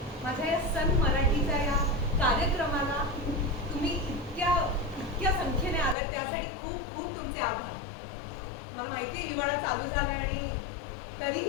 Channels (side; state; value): right; drops out; at 6.0 s